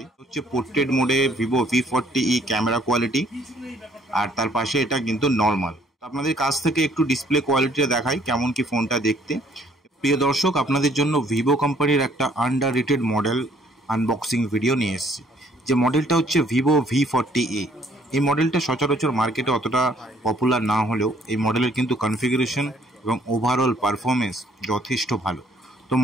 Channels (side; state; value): both; normal; correlation 0.62